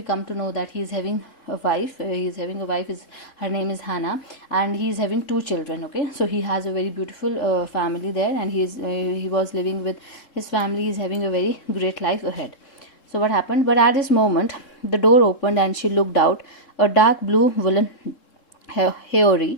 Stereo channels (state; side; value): late; right; 3.7 ms